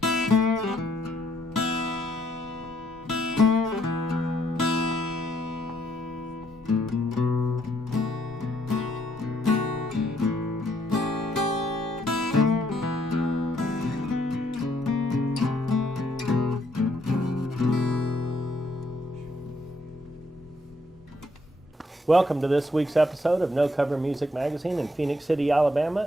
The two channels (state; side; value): normal; both; correlation 0.71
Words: Welcome to this week's episode of No Cover Music Magazine in Phoenix City,